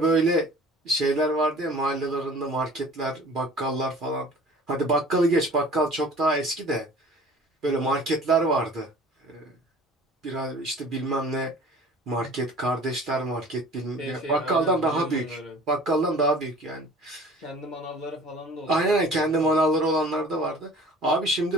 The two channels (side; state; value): both; normal; correlation 0.47